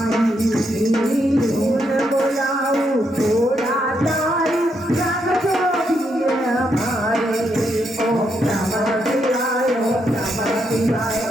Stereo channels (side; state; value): both; normal; correlation 0.78